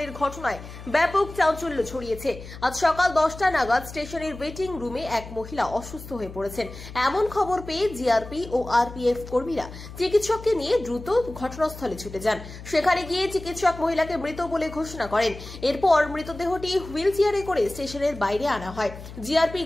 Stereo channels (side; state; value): left; noise; hum, 14 dB below the sound